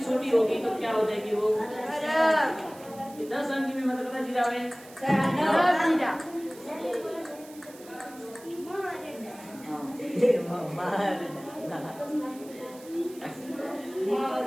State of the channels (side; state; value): right; noise; hiss, 21 dB below the sound